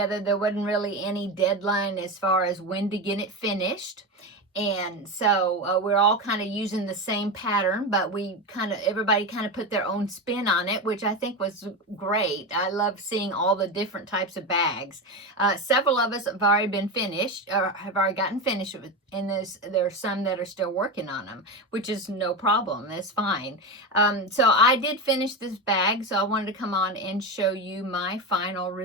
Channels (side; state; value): both; normal; correlation 0.18